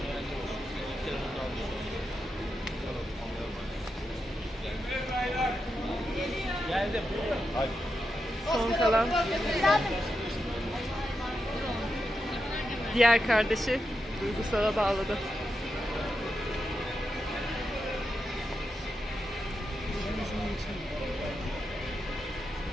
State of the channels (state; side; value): normal; both; correlation 0.87